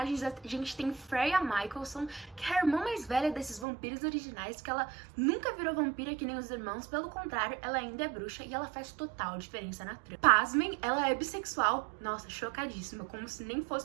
a gente tem Freya Michelson, que é a irmã mais velha desses vampiros originais, que ela nunca virou vampira que nem os irmãos, pelo contrário, ela ainda é bruxa e ela faz total diferença na trama. Pasmem, ela é bissexual. Nossa, chocadíssima, como se nem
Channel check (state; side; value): drops out; left; at 3.7 s